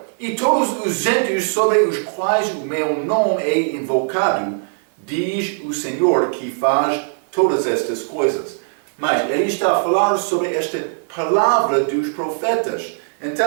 e todos os gentios sobre os quais o meu nome é invocado, diz o Senhor que faz todas estas coisas. Mas ele está a falar sobre esta palavra dos profetas.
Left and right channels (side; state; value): left; silent; digital silence